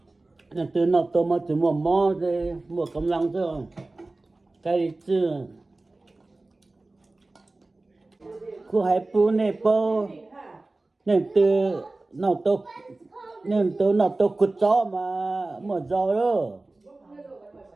từ nó tôi mà từ mò thì mua cầm lăng thôi cái gì chứ cô hãy pu này po nên từ nó tôi cút gió mà một gió đó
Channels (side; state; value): left; quieter; 3.1 dB